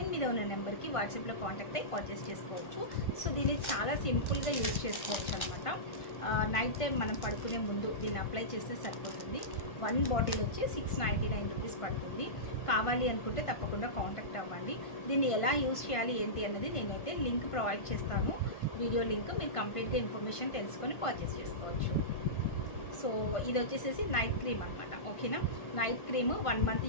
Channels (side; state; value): right; late; 1.5 ms